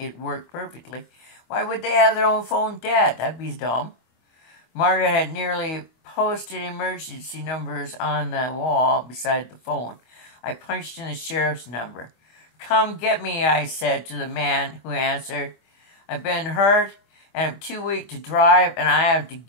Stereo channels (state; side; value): late; right; 25 ms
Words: worked perfectly. Why would they have their own phone dead? That'd be dumb. Margaret had nearly posted emergency numbers on the wall beside the phone. I punched in the sheriff's number. "Come get me," I said to the man who answered. "I've been hurt, and I'm too weak to drive, and I have to